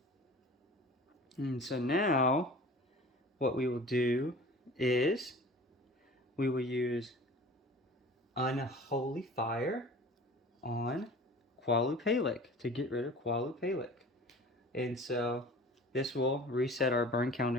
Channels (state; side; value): normal; both; correlation 0.42